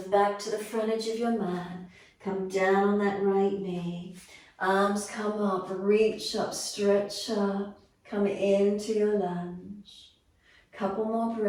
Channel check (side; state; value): both; identical; correlation 1.00